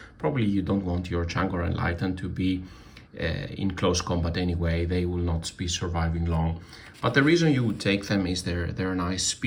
Probably you don't want your Tzaangor Enlightened to be in close combat anyway. They will not be surviving long. But the reason you would take them is their nice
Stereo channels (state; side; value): identical; both; correlation 1.00